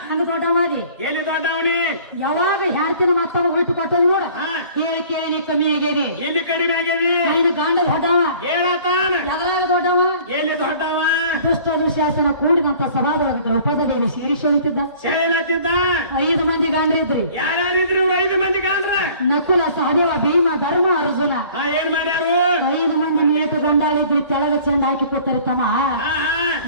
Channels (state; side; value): inverted; both; correlation -0.51